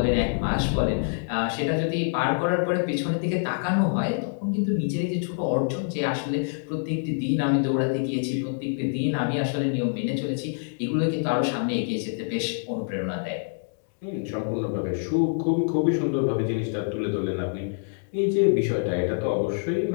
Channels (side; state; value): right; silent; digital silence